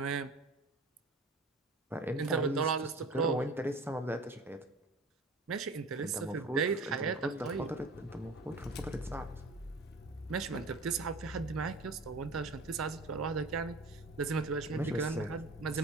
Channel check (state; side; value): quieter; left; 3.2 dB